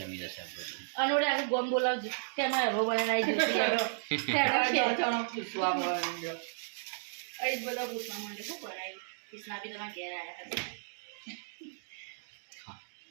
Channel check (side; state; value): left; silent; digital silence